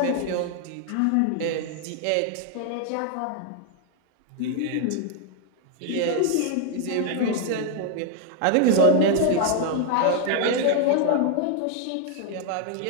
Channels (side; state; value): both; different; correlation 0.00